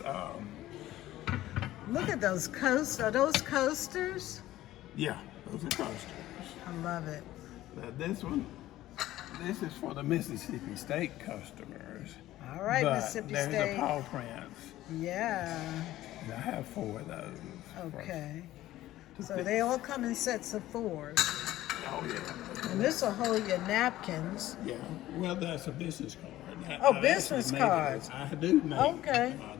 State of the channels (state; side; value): quieter; right; 15.0 dB